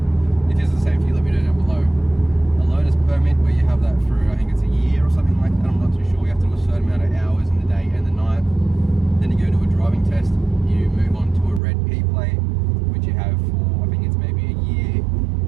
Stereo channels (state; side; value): drops out; left; at 11.6 s